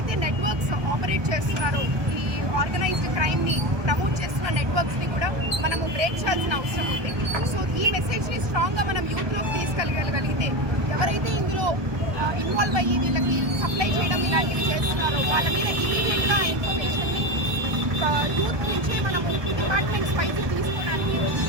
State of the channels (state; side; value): late; left; 1.2 ms